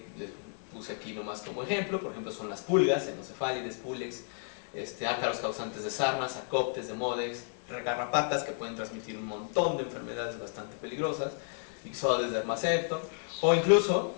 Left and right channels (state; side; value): silent; right; 56 dB below the other